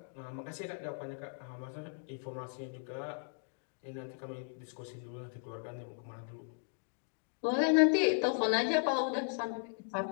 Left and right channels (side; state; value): right; silent; digital silence